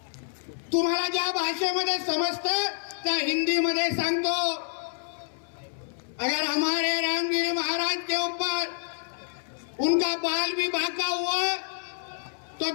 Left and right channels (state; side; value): silent; right; 59 dB below the other